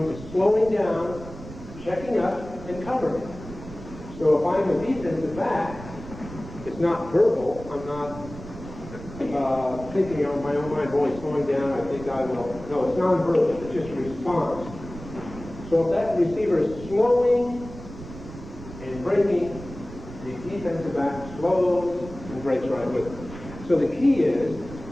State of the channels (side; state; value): right; noise; rumble, 14 dB below the sound